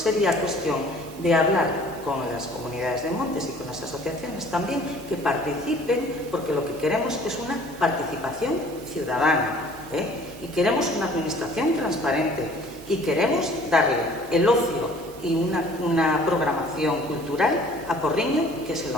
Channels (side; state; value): both; normal; correlation 0.52